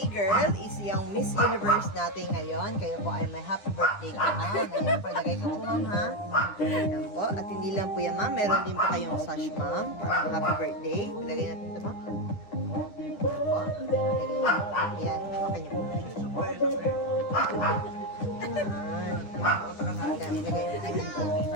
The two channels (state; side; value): late; right; 10 ms